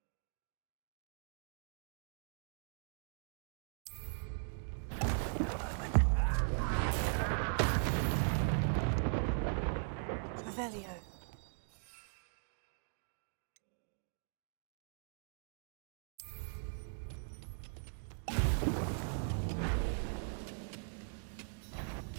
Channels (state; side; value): silent; left; digital silence